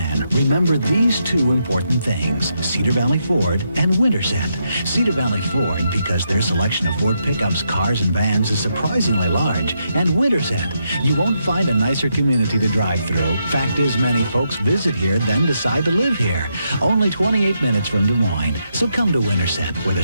remember these two important things: Cedar Valley Ford and Winterset. Cedar Valley Ford, because their selection of Ford pickups, cars, and vans is surprisingly large. And Winterset, you won't find a nicer community to drive through. Fact is, many folks visit here, then decide to live here. Only 28 minutes from Des Moines. So come to Winterset, where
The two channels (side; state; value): both; inverted; correlation -0.81